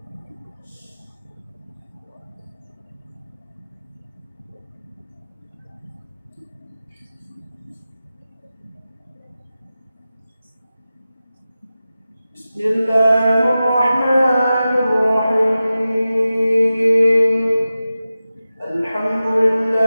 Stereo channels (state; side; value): inverted; both; correlation -0.94